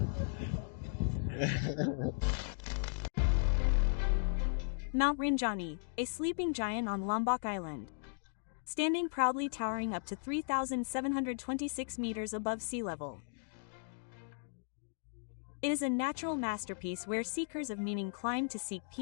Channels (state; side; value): silent; right; digital silence